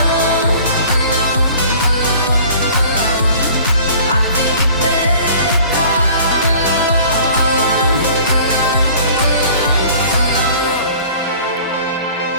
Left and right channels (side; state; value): both; inverted; correlation -0.48